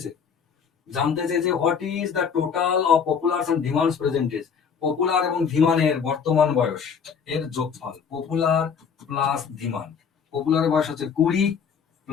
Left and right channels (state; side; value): quieter; right; 6.6 dB